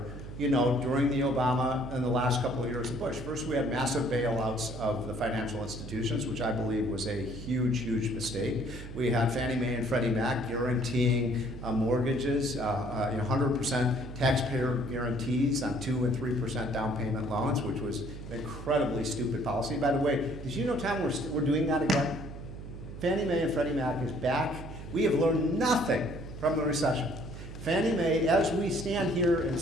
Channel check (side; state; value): right; noise; hum, 11 dB below the sound